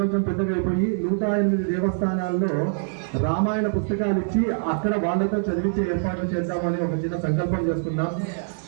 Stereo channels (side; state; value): left; silent; 60 dB below the other